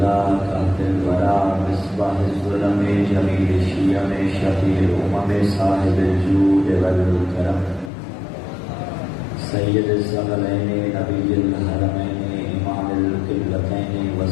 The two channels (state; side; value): drops out; right; at 7.9 s